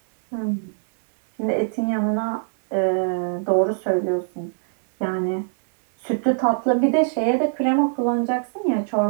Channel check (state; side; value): silent; left; 64 dB below the other